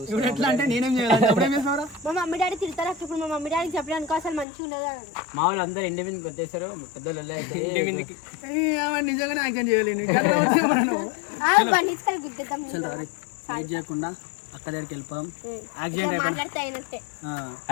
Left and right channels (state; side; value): drops out; right; at 4.5 s